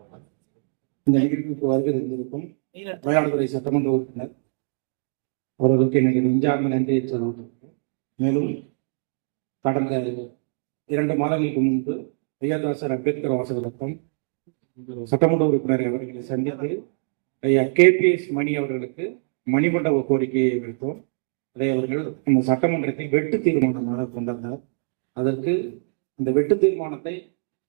இந்த நிகழ்வுக்கு வருகை இருந்திருக்கும் மயிலாடுதுறை சட்டமன்ற உறுப்பினர் அவர்களுக்கு என்னுடைய நெஞ்சார்ந்த நன்றியை சொல்லியிருக்கிறேன். மேலும் கடந்த 2 மாதங்களுக்கு முன்பு ஐயர்தாசர் அம்பேத்கர் வாசகரத்தம் சட்டமன்ற உறுப்பினர் அவர்களை சந்தித்து ஐயா KPS மணி அவர்களுக்கு மணிமண்டப கோரிக்கையை வைத்தோம். அதை அவர்கள் இந்த சட்டமன்றத்தில் வெட்டு தீர்மானமாக கொண்டாந்தார். அதற்கு இந்த வெட்டு தீர்மானத்தை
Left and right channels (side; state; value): left; silent; digital silence